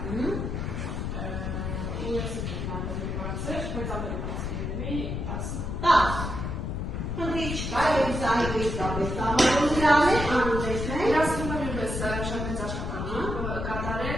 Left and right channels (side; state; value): left; noise; rumble, 3 dB below the sound